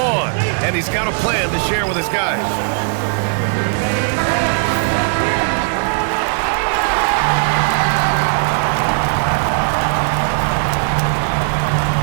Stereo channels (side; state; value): left; silent; 68 dB below the other